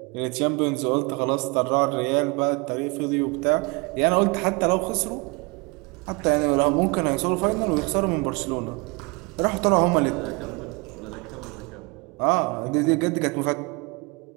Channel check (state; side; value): quieter; left; 27.9 dB